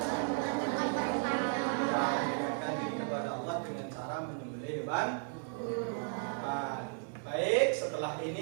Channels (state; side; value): silent; left; 55 dB below the other